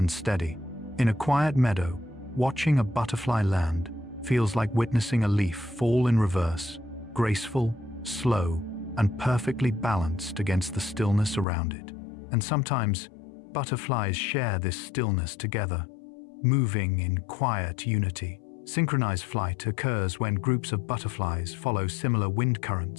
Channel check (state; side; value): drops out; right; at 11.5 s